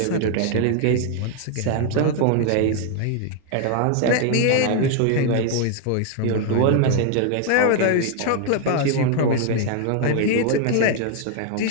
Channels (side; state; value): both; different; correlation 0.00